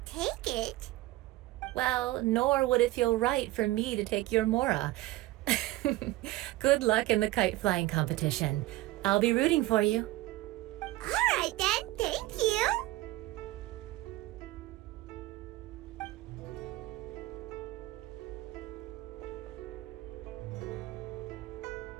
take it. Well, nor would it feel right for me to take your Mora. Good luck in the kite flying competition. I'll be rooting for you. All right then, thank you.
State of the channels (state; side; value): quieter; left; 17.4 dB